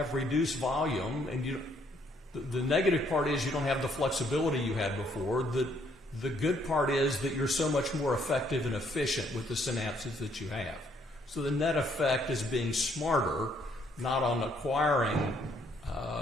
reduced volume, and the negative part is you don't have the flexibility you had before, the good part is that you're so much more effective and efficient with the synapses that you have. So the net effect is being smarter, not on acquiring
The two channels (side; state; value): both; normal; correlation 0.68